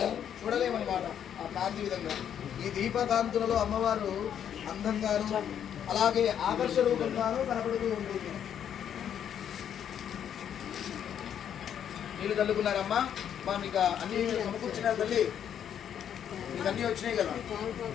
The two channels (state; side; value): quieter; right; 9.2 dB